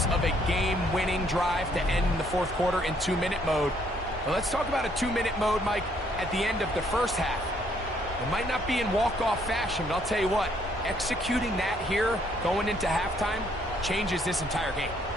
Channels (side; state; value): both; normal; correlation 0.67